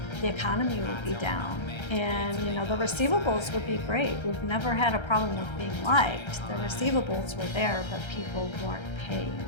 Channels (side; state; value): right; late; 1.3 ms